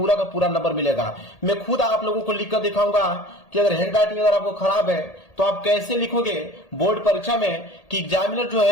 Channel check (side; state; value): right; late; 1.8 ms